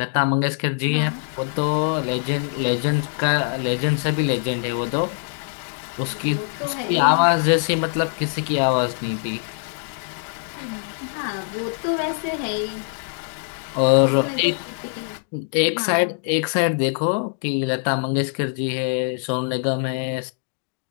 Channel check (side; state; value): right; silent; 59 dB below the other